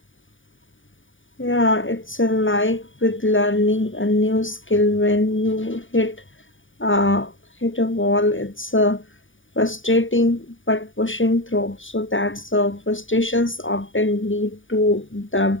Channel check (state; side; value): late; right; 0.57 ms